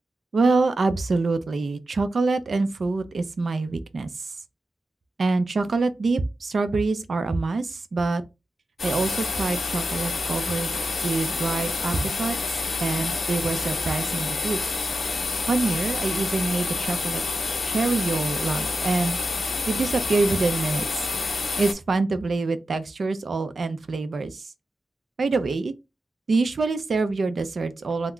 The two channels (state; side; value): normal; both; correlation 0.90